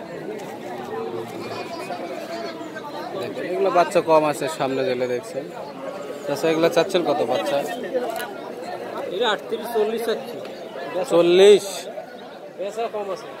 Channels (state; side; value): identical; both; correlation 1.00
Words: এগুলো বাচ্চা কম আছে, সামনে গেলে দেখছেন। আচ্ছা, এগুলো চাচ্ছেন কত বাচ্চা? 38-40 চাচ্ছি। 40 বেচা কম আছে।